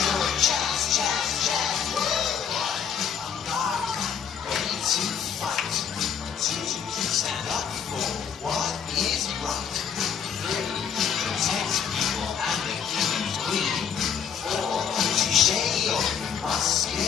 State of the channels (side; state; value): right; quieter; 7.6 dB